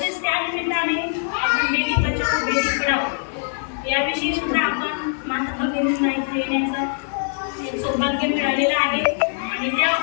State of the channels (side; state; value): right; silent; digital silence